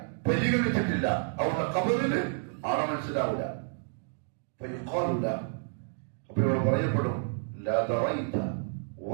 പരിഗണിച്ചിട്ടില്ല. അവരുടെ ഖബറിന് ആളെ മനസ്സിലാവില്ല. അപ്പൊ ഇവിടെ പറയപ്പെടും, ലാ ദറൈത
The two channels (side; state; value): left; silent; 58 dB below the other